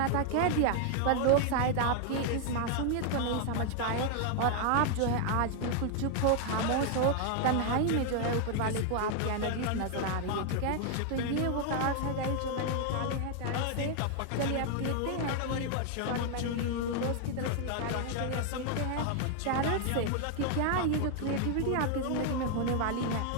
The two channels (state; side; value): different; both; correlation 0.00